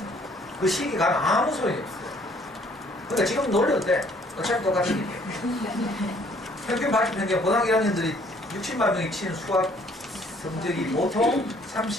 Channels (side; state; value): both; normal; correlation 0.61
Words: 그 시기가 아무 소용이 없어요. 그러니까 지금 놀려도 돼. 어차피 똑같은 일이에요. 평균 발표 평균 고등학교 1학년들이 60만 명이 치는 수학 성적이 보통